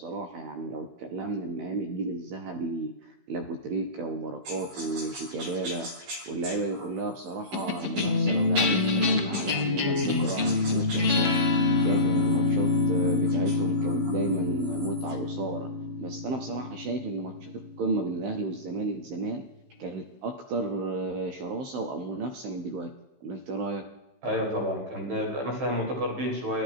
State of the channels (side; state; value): left; late; 15 ms